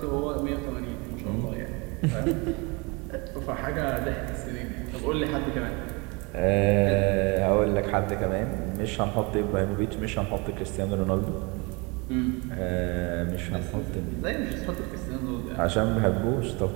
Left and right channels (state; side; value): quieter; left; 28.4 dB